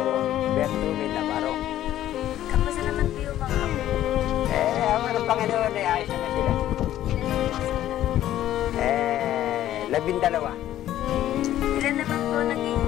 Bertumi Navarro. Kamusta naman po yung mga apo? Ang mga Panginoon ay ayos naman sila. Ilan po sila? 12. Ilan naman po naging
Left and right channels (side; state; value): right; quieter; 12.7 dB